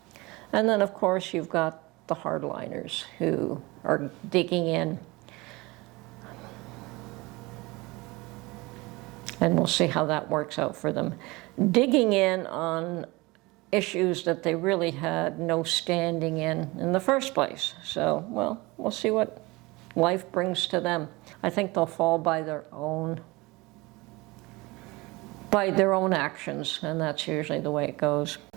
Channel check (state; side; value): quieter; left; 23.1 dB